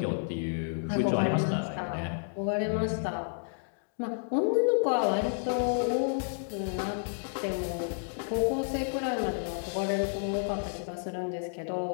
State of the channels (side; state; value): right; silent; digital silence